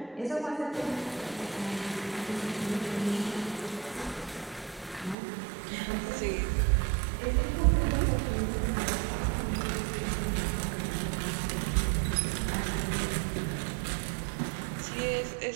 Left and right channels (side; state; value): left; drops out; at 5.2 s